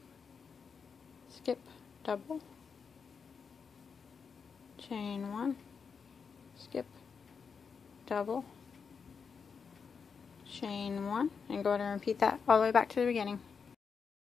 skip, double, chain 1, skip, double, chain 1, and go ahead and repeat that all the way back to the beginning.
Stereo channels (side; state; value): right; quieter; 5.9 dB